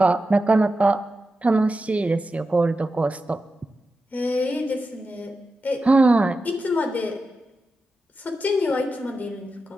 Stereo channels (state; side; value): normal; both; correlation 0.91